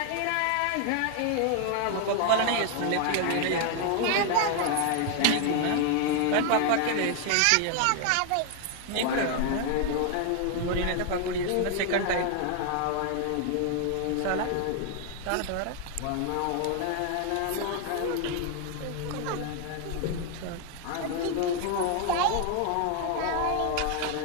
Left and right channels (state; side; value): different; both; correlation 0.00